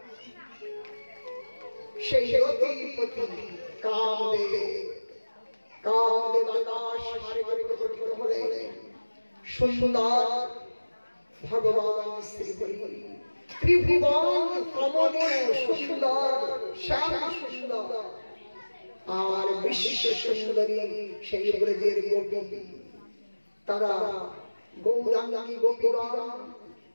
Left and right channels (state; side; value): inverted; both; correlation -1.00